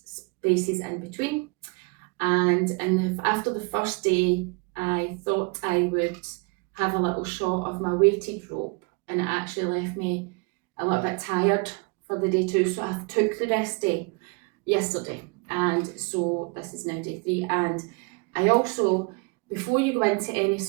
spaces in between. And after the first day, I thought I would have a little shot of my weighted rope, and it actually left me a little bit tired for the day 2. So I took the rest day yesterday, and so this is now day 3. And I also, before you go into any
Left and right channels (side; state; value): left; quieter; 31.8 dB